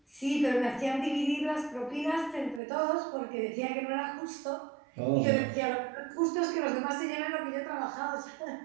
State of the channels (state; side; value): drops out; left; at 2.6 s